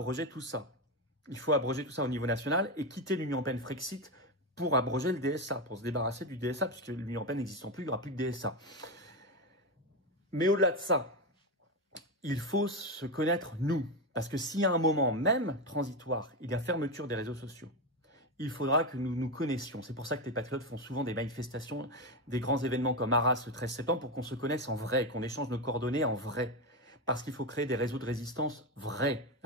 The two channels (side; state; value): both; normal; correlation 0.12